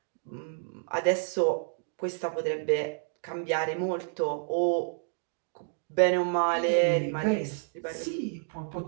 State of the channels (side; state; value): left; silent; digital silence